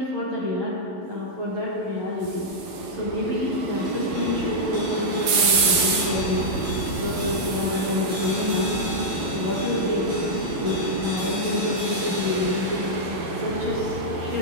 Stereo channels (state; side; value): late; left; 12 ms